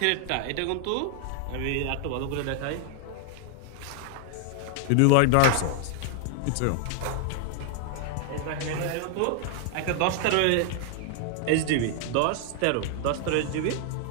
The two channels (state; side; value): different; both; correlation 0.00